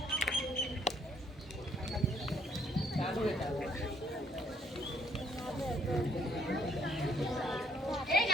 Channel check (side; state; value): both; normal; correlation 0.67